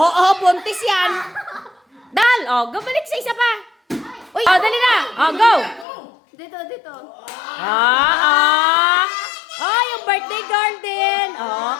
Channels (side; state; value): right; drops out; at 5.9 s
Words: buntis yan. Dal, balik sa isa pa. Uy, dali na. Go. Dito. Yung birthday girl din.